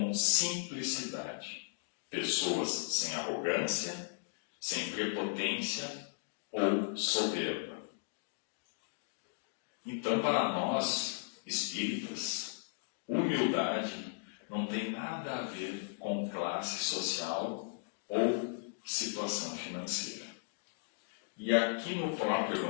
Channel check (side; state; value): right; silent; digital silence